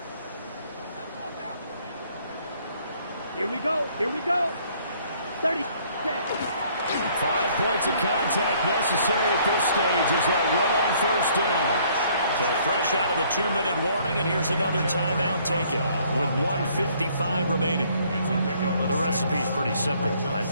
Here we go. Here we go. 30 seconds. 5 points of contact necessary at this stage as they'll run on first down. So fresh out of the 2-minute warning, and here's another timeout taken with 1:55 remaining. The recipe's pretty simple, I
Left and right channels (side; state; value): both; inverted; correlation -0.62